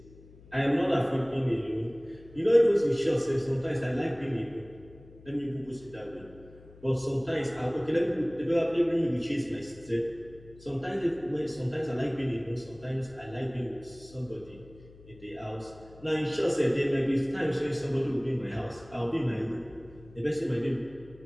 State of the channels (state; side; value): noise; left; hum, 22 dB below the sound